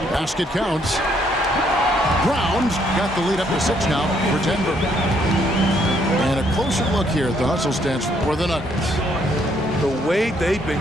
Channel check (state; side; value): normal; both; correlation 0.69